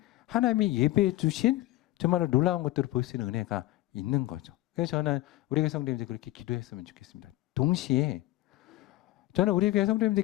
하나님이 예배해 주신 정말로 놀라운 것들을 볼 수 있는 은혜가 있는 거죠. 그래서 저는 우리 교회 성도님들 그렇게 기도했으면 좋겠습니다. 동시에 저는 우리 교회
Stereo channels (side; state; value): right; quieter; 16.8 dB